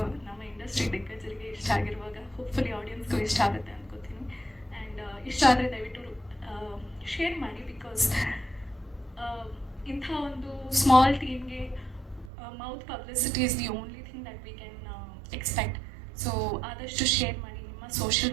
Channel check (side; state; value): left; drops out; at 12.3 s